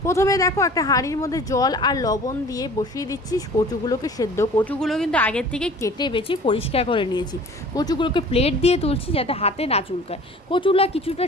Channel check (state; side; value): normal; both; correlation 0.45